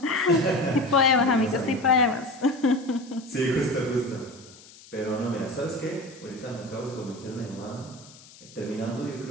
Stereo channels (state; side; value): noise; left; hiss, 22 dB below the sound